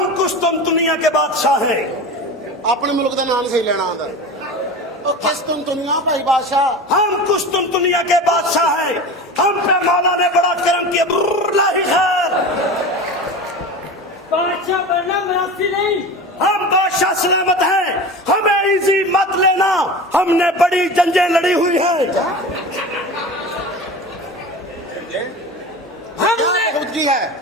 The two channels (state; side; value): normal; both; correlation 0.31